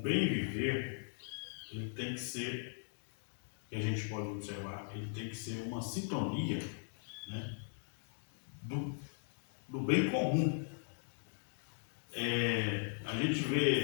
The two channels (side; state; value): right; silent; digital silence